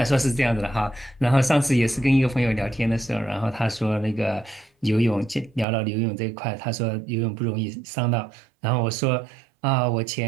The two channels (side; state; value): left; drops out; at 5.7 s